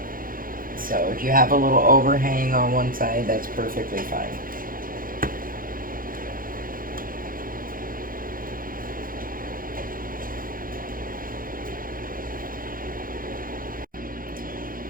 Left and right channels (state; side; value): late; left; 0.41 ms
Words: So if you have a little overhang on one side, that's perfectly fine.